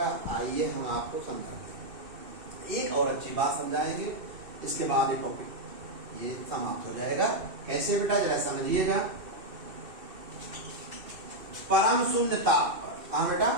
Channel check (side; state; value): left; late; 2.6 ms